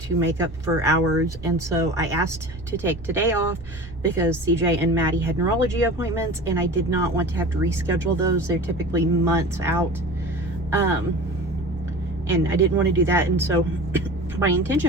to make up for hours, and so I asked to take today off because CJ and Maddie had neurology appointments, and I did not want to have to reschedule those. They're typically months out, and I didn't want to do that. And so my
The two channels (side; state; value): both; normal; correlation 0.36